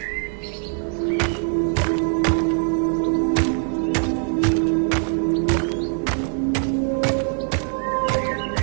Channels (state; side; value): silent; left; 55 dB below the other